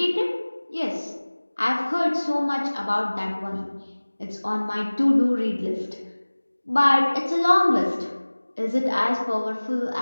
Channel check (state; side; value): inverted; both; correlation -1.00